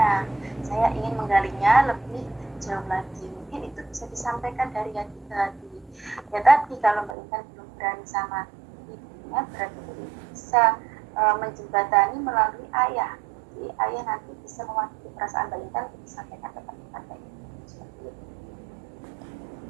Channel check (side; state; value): left; drops out; at 7.2 s